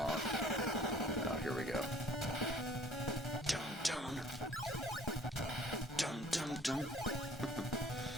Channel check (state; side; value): normal; both; correlation 0.54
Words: Oh, here we go. Dun dun. Dun dun dun.